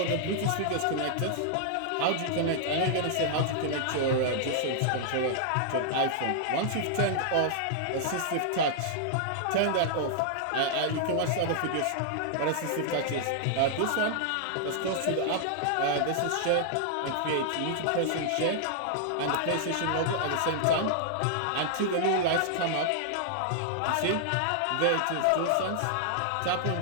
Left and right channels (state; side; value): different; both; correlation -0.01